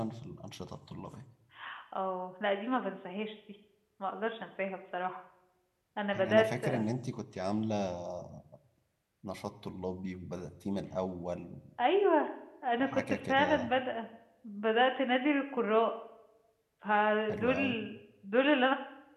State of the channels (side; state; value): both; identical; correlation 1.00